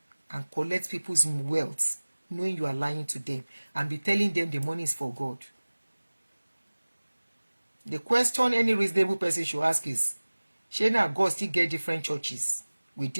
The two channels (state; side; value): inverted; both; correlation -1.00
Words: and collect people's wealth, knowing you are lying to them, and be telling them the money is for God. The question any reasonable person should ask is, shey God still get different churches with